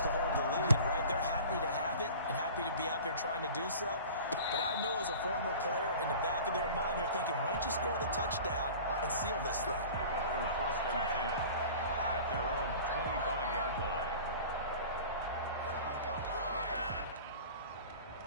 to hold the lead, right? They're happy to have it and happy to be out there trying to do so. But I know as a former player, in the back of their mind, they're thinking, why don't you score the touchdown and seal this thing? 1st and 10 at their own 25-yard line.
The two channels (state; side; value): inverted; both; correlation -0.40